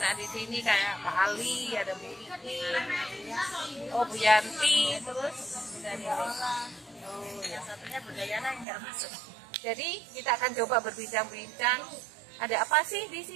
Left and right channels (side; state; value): left; drops out; at 8.7 s